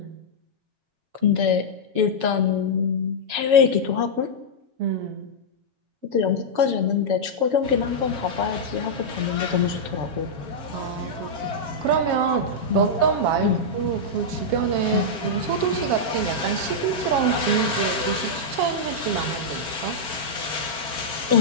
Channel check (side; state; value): left; late; 7.3 ms